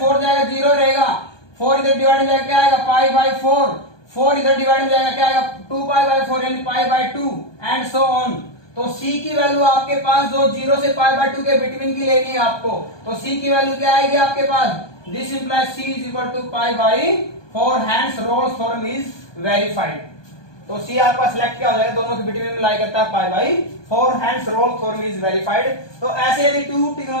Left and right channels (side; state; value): right; late; 1.2 ms